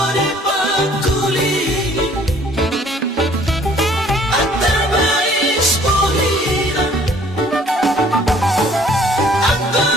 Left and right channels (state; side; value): normal; both; correlation 0.57